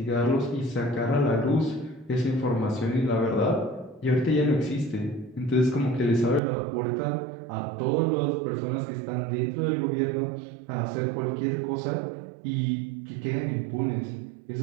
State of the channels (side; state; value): left; drops out; at 6.4 s